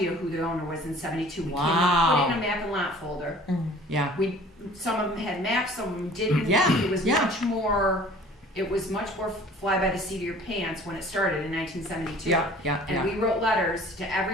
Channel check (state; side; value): normal; both; correlation 0.49